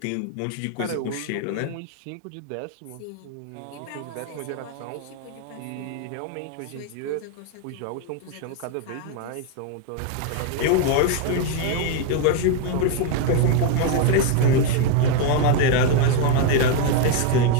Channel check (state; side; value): different; both; correlation 0.01